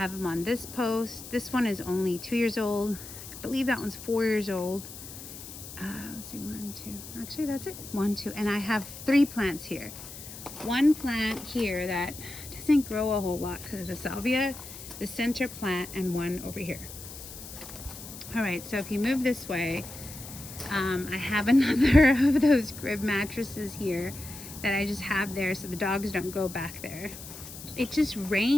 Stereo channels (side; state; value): left; noise; hiss, 13 dB below the sound